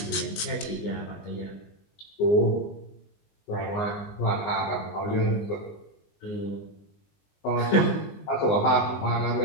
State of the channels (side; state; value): right; late; 20 ms